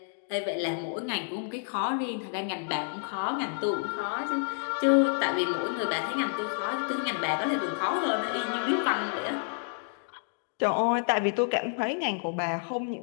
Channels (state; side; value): silent; right; digital silence